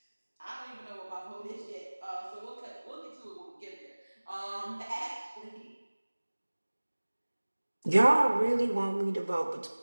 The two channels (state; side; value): inverted; both; correlation -1.00